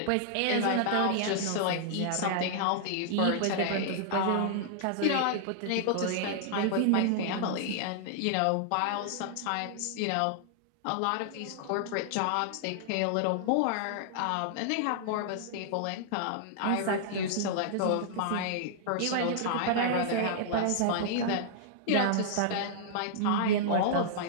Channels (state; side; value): different; both; correlation -0.01